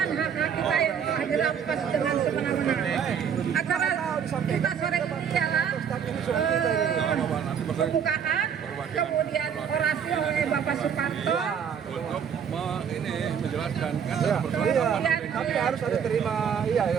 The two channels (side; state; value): left; quieter; 7.7 dB